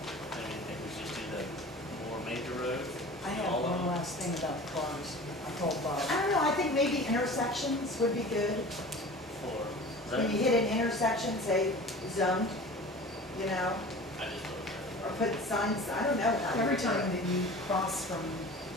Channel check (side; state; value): both; normal; correlation 0.39